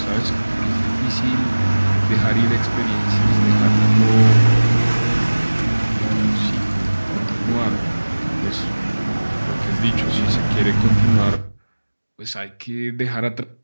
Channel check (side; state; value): both; inverted; correlation -1.00